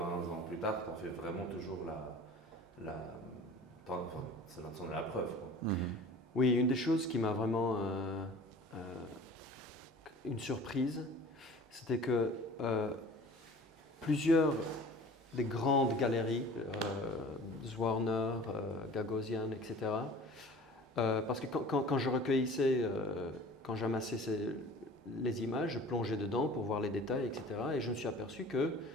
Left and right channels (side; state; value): both; normal; correlation 0.44